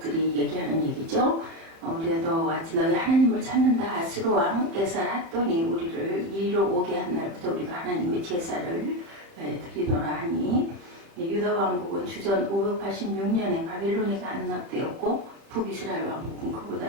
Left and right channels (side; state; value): left; late; 30 ms